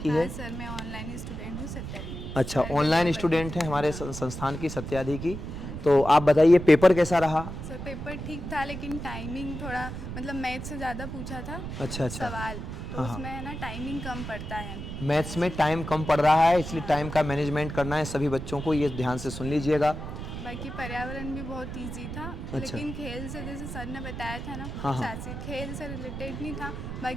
है? सर मैं ऑनलाइन स्टूडेंट हूँ सत्याजी। अच्छा, ऑनलाइन स्टूडेंट हैं हमारे संस्थान की सत्याजी की। तो आप बताइए पेपर कैसा रहा? सर पेपर ठीक था, लेकिन टाइमिंग थोड़ा मतलब मैथ से ज़्यादा पूछा था अच्छा अच्छा। सवाल, तो उसमें है ना टाइमिंग कम पड़ता है। मैथ्स में टाइम कम पड़ रहा है, इसलिए टाइम का मैनेजमेंट करना है सभी बच्चों को, ये ध्यान से सुन लीजिएगा। बाकी पर्यावरण भी बहुत इजी था। अच्छा। लेकिन खेल से, जैसे सर ने बताया था ना, हाँ, हाँ। शासी खेल से रिलेटेड नहीं था।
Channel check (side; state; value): right; noise; rumble, 7 dB below the sound